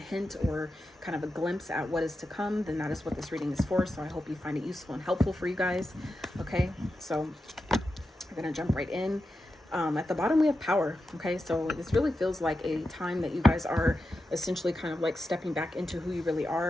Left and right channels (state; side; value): normal; both; correlation 0.89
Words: or kind of a glimpse at what is to come, then that is what this reading is for. So I hope you find it useful and helpful for you guys. Okay, so I'm gonna jump right in. At the bottom we have power. Okay, so this really feels like a time that you guys are essentially kind of like stepping back into who you really